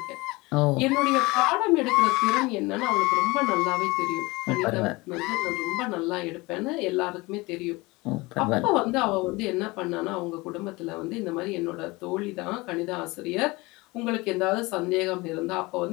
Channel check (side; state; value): right; quieter; 23.1 dB